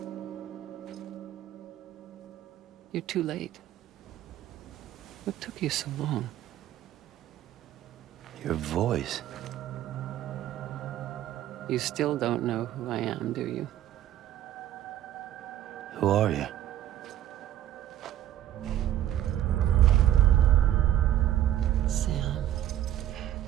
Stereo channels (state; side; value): quieter; left; 12.1 dB